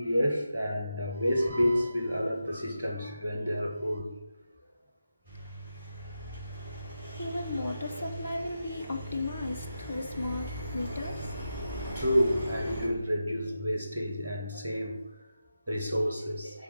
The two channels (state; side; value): inverted; both; correlation -0.89